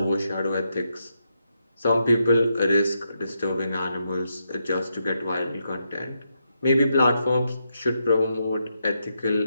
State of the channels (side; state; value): both; inverted; correlation -0.82